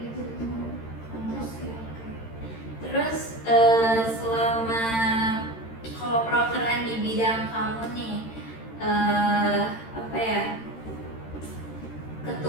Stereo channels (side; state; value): right; late; 13 ms